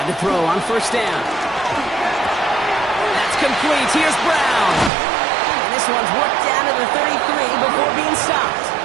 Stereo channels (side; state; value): left; drops out; at 4.9 s